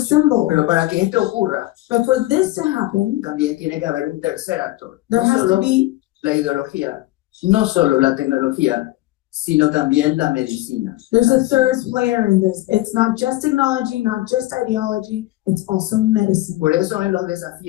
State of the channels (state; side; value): quieter; right; 17.7 dB